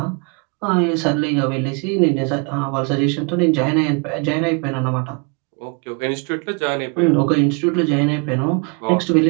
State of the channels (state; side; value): quieter; left; 32.8 dB